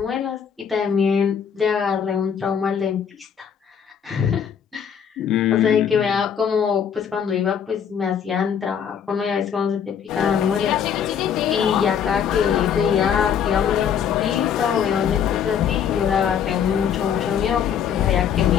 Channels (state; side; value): quieter; right; 7.9 dB